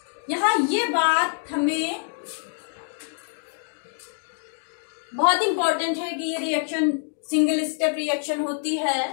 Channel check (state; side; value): silent; right; digital silence